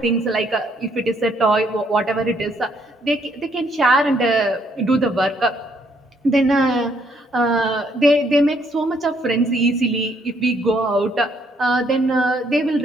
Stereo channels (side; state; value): both; normal; correlation 0.69